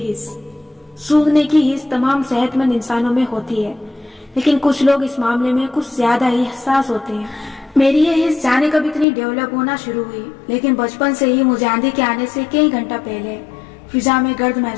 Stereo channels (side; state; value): right; drops out; at 9.1 s